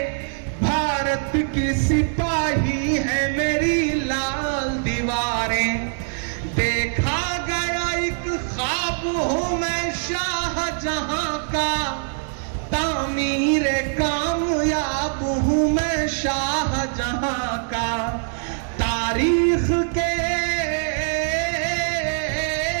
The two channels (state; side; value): silent; left; digital silence